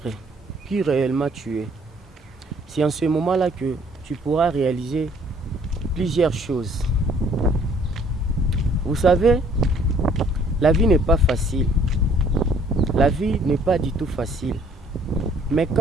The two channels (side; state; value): both; normal; correlation 0.60